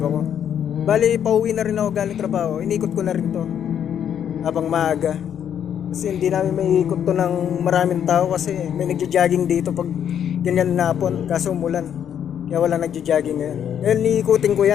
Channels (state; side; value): quieter; right; 9.1 dB